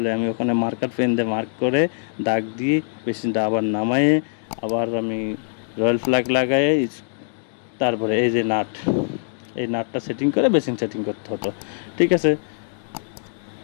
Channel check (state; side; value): silent; right; 64 dB below the other